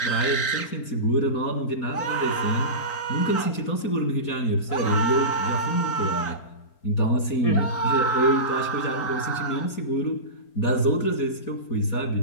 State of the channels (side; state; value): right; late; 4.4 ms